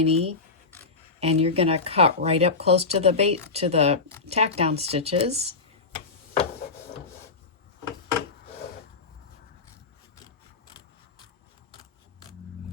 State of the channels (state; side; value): quieter; right; 4.1 dB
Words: and you're going to cut right up close to the tack down stitches.